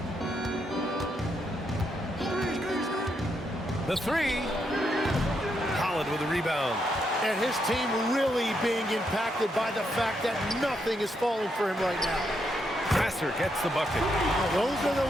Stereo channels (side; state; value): both; normal; correlation 0.79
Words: The three. Holland with a rebound. And his team really being impacted by the fact that nothing is falling for him right now. Successor gets the bucket. Those are the